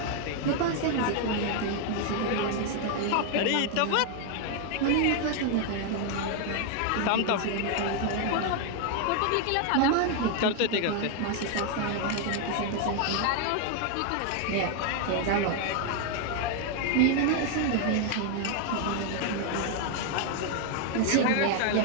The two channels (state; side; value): different; both; correlation 0.00